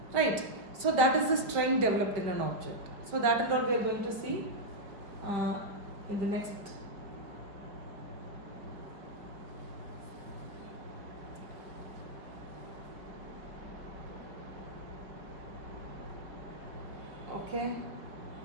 right? So that is the strain developed in an object. So that and all we are going to see in the next. Okay.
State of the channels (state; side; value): late; left; 4.8 ms